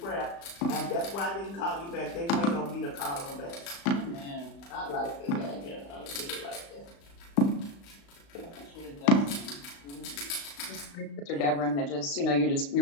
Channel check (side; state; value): right; late; 35 ms